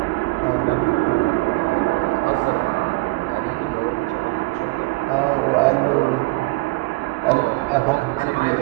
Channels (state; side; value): quieter; left; 23.3 dB